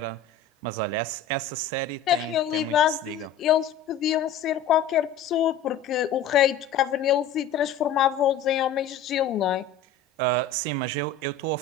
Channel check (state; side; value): quieter; right; 6.3 dB